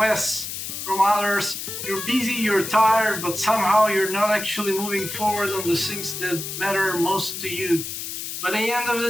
from others. You're busy, you're tired, but somehow you're not actually moving forward on the things that matter most to you. By the end of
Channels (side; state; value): left; noise; hiss, 6 dB below the sound